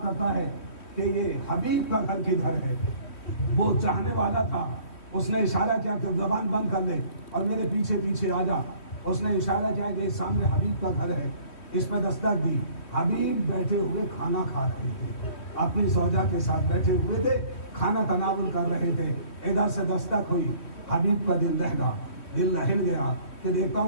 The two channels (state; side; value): late; right; 3.1 ms